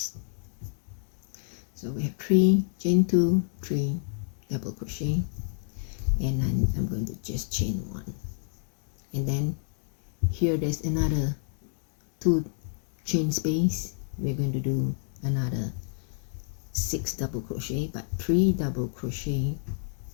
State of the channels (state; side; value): silent; right; 59 dB below the other